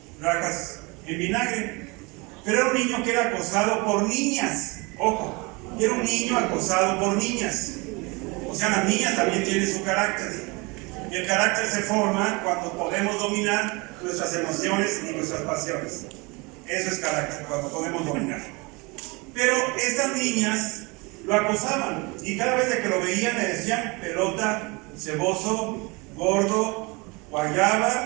rajas en vinagre. Pero era un niño que era acosado por niñas, ojo, y era un niño acosado por niñas. O sea, las niñas también tienen su carácter. Y el carácter se forma cuando podemos dominar nuestras emociones y nuestras pasiones. Eso es carácter, cuando podemos dominar. Pero estas niñas lo acosaban y cada vez que lo veían le decían pelota, ceboso, gordo,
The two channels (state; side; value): quieter; left; 27.0 dB